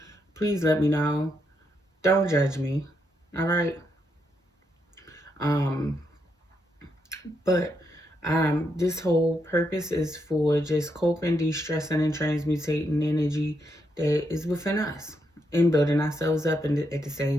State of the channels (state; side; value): normal; both; correlation 0.80